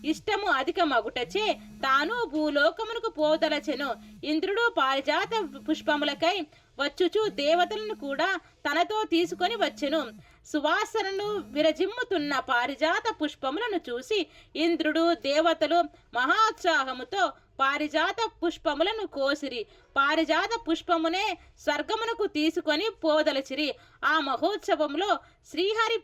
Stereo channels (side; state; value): both; identical; correlation 1.00